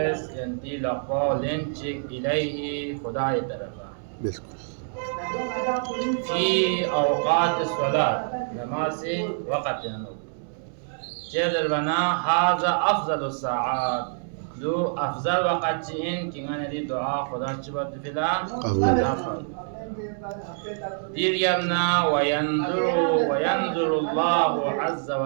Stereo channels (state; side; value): silent; left; digital silence